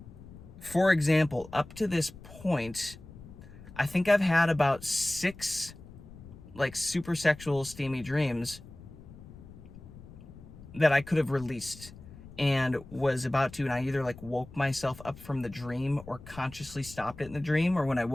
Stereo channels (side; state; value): left; noise; rumble, 18 dB below the sound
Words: For example, up to this point, I think I've had about 6 super sexual steamy dreams that I could have released and was about to, and I either woke myself up from the dream or consciously stopped it in the dream, or when I